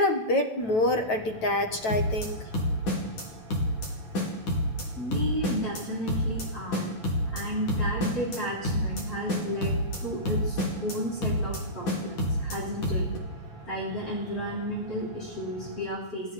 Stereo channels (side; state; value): right; late; 9.1 ms